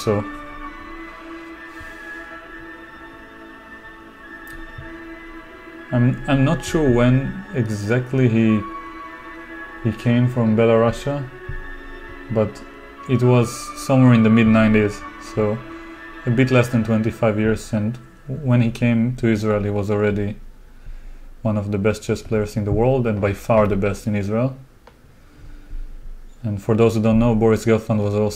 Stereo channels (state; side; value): identical; both; correlation 1.00